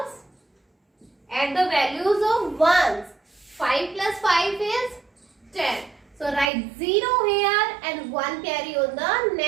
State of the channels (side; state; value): left; drops out; at 6.5 s